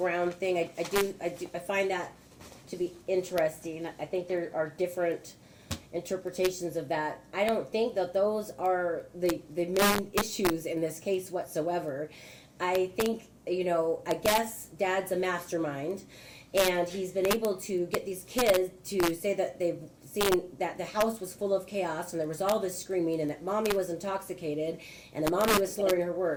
thing. I find that to be interesting. I think there are different interpretations of that. I don't think that those are the main issues in this case whatsoever. I think, I guess Dad's a mastermind, and he's been able to get these kids to say that they've seen that the house was full of chaos and there was all this screaming and that Mommy was intoxicated and that Mommy was slurring her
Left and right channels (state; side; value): identical; both; correlation 1.00